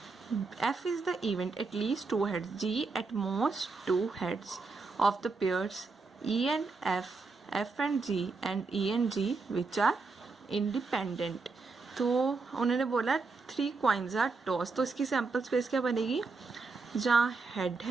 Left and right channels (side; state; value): left; quieter; 4.1 dB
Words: F is the event at least 2 heads. G at most 2 heads of the pairs E and F, F and G, and E and G which are independent. तो उन्होंने बोला 3 coins are tossed. तो इसकी sample space क्या बनेगी, जहाँ head